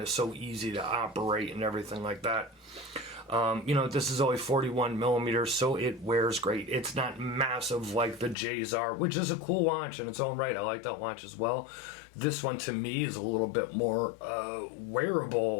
is so easy to operate and everything like that. You know, this is only 41 millimeters, so it wears great. It's not massive like the Gsar, which is a cool watch in its own right. I like that watch as well. This one, to me, is a little bit more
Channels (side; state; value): right; drops out; at 8.3 s